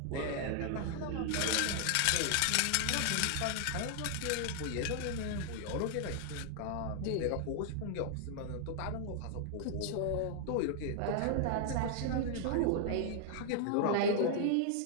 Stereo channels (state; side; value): different; both; correlation 0.00